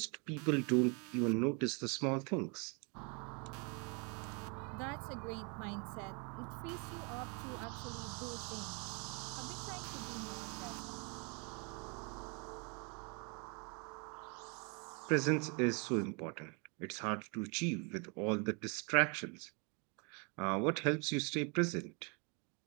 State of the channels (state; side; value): quieter; left; 34.0 dB